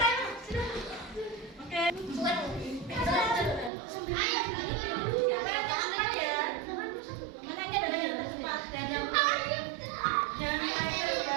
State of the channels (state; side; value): drops out; left; at 3.7 s